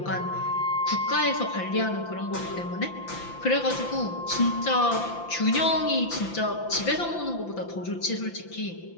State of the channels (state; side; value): late; right; 5.9 ms